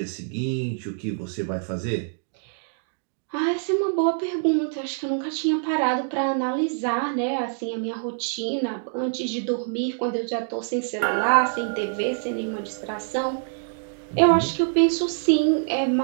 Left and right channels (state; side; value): silent; left; digital silence